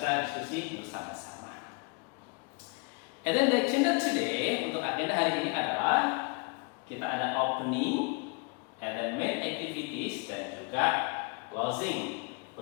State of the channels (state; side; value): quieter; right; 31.6 dB